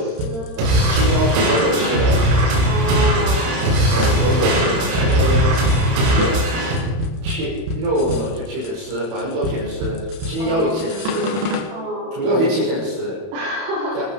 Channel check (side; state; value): left; late; 31 ms